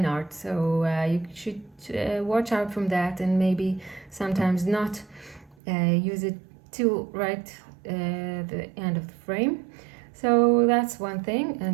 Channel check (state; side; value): drops out; left; at 5.6 s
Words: art. So you should watch out from that, and maybe sometimes not use it till right the end of the frame. So that's one thing.